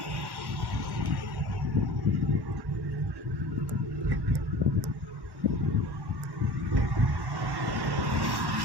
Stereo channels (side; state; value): left; late; 1.1 ms